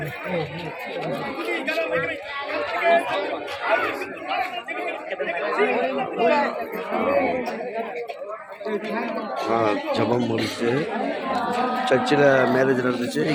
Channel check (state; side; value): identical; both; correlation 1.00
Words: ஜபம் முடிச்சு சர்ச்சில் மேரேஜ் நடந்துச்சு.